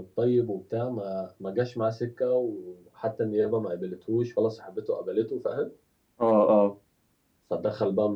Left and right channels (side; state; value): both; identical; correlation 1.00